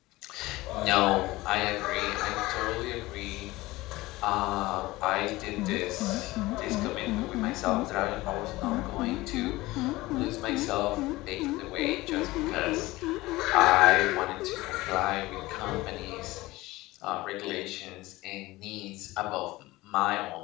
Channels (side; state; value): right; quieter; 19.5 dB